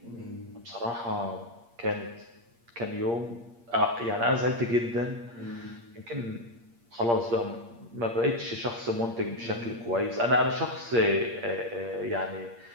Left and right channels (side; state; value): left; late; 8.6 ms